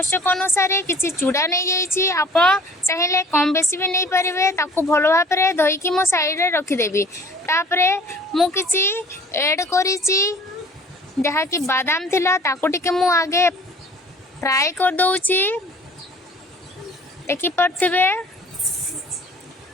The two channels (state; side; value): normal; both; correlation 0.49